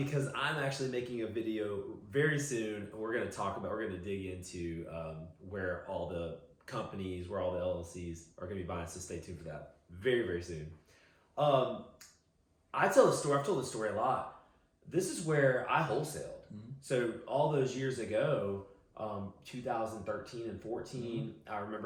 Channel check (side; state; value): both; identical; correlation 1.00